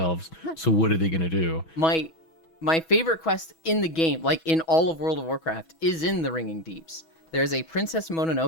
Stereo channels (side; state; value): right; late; 6.1 ms